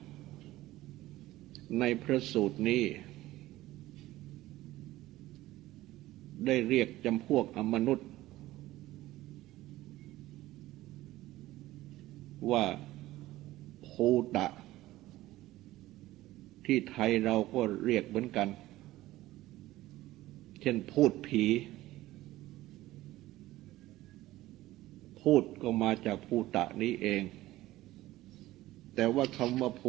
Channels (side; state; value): left; quieter; 16.5 dB